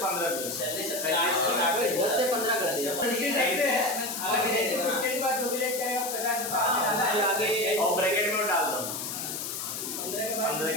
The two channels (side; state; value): left; noise; hiss, 5 dB below the sound